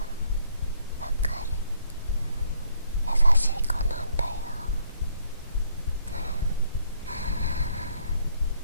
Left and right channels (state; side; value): inverted; both; correlation -0.67